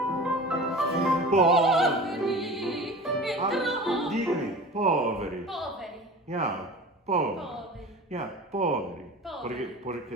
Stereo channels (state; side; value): normal; both; correlation 0.36